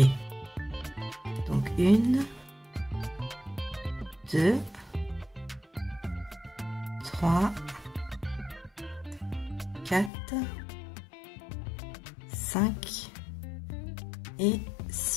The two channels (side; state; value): right; drops out; at 10.1 s